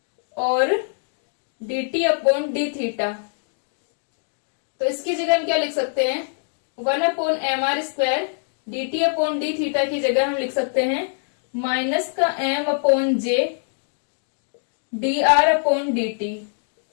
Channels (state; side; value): silent; right; digital silence